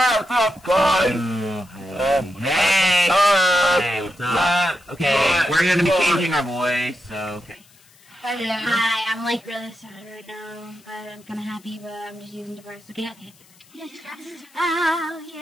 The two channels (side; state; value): left; noise; hiss, 28 dB below the sound